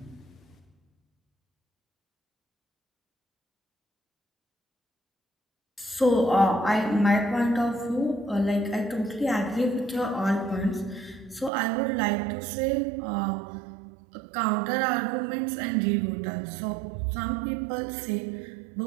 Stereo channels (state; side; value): drops out; left; at 11.5 s